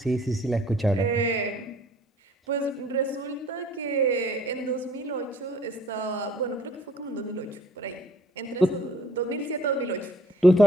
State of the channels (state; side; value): normal; both; correlation 0.57